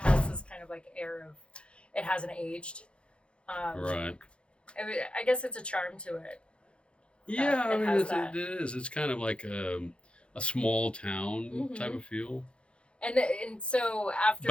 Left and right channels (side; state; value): right; late; 0.058 ms